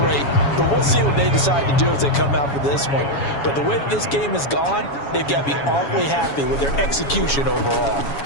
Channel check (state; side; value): late; right; 7.2 ms